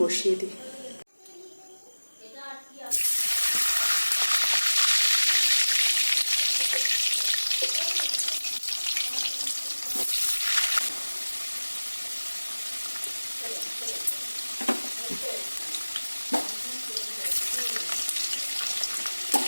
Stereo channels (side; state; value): both; inverted; correlation -1.00